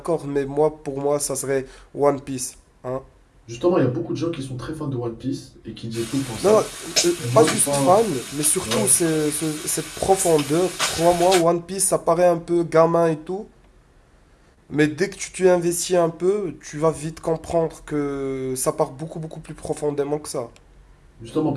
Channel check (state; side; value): identical; both; correlation 1.00